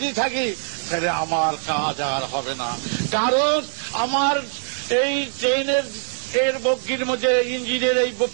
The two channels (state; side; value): silent; left; digital silence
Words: থাকি, তাহলে আমার কাজ আর হবে না। কারণ আমার এই ট্রেনের এর বগির মধ্যে, ইঞ্জিনের এই